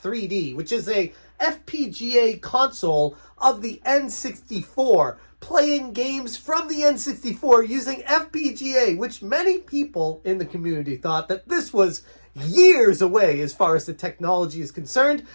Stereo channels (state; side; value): inverted; both; correlation -1.00